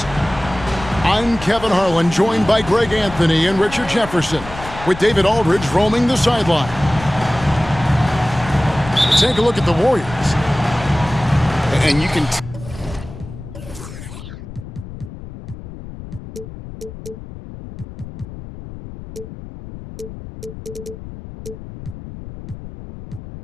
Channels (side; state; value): left; noise; rumble, 13 dB below the sound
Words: I'm Kevin Harlan, joined by Greg Anthony and Richard Jefferson, with David Aldridge roaming the sideline. Take a look at the Warriors. And you can...